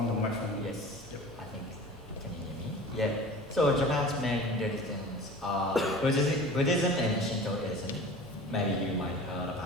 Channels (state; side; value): normal; both; correlation 0.40